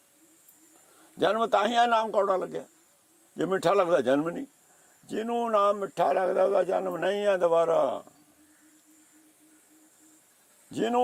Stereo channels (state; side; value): identical; both; correlation 1.00